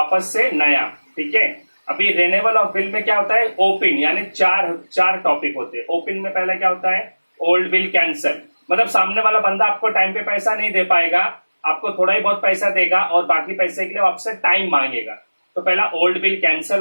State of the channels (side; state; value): both; inverted; correlation -1.00